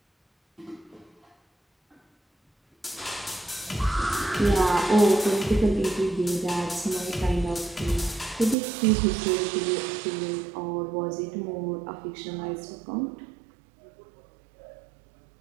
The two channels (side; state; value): left; drops out; at 8.6 s